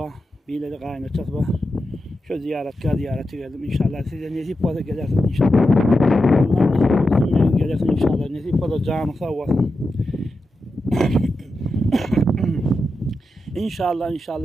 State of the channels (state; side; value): normal; both; correlation 0.89